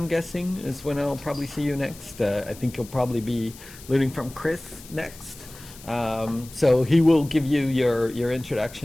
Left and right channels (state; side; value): noise; left; hiss, 19 dB below the sound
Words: guessing, is when I'll probably see you next. I think you'll probably be learning from Chris next. So he will give you your